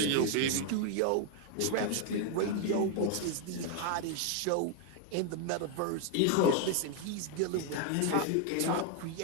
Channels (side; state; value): both; different; correlation 0.01